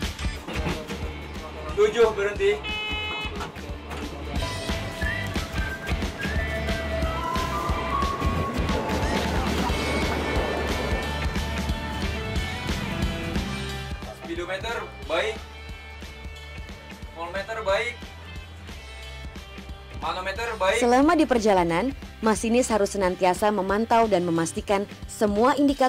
Tujuh berhenti. Speedometer baik. Voltmeter baik. Manometer baik. Selama di perjalanan, masinis harus senantiasa memantau dan memastikan semua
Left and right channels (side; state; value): both; identical; correlation 1.00